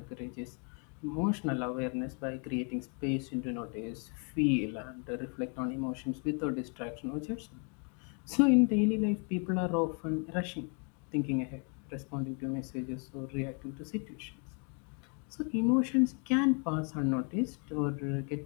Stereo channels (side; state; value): right; quieter; 38.2 dB